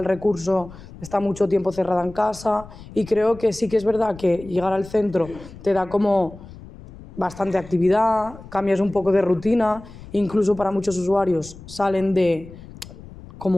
recurso está mucho tiempo cerrada en casa y creo que sí que es verdad que llegar al centro te da como bastante actividad, cambias un poco de rutina, incluso para muchos usuarios salen de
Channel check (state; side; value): noise; left; rumble, 17 dB below the sound